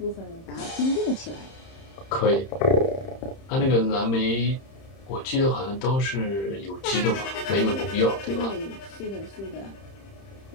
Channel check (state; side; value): late; right; 31 ms